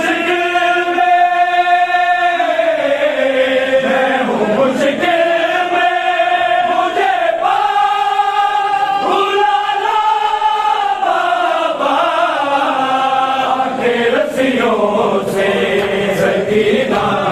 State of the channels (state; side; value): identical; both; correlation 1.00